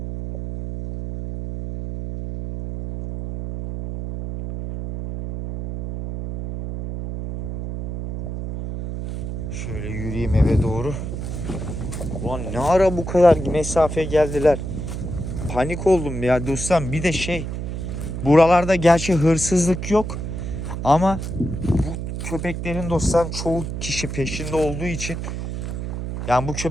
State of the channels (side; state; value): right; noise; hum, 5 dB below the sound